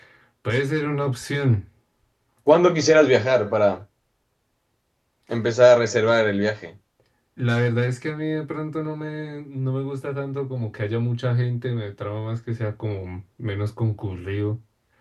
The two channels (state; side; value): identical; both; correlation 1.00